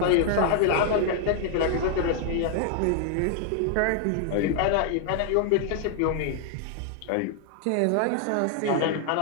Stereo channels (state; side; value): different; both; correlation 0.00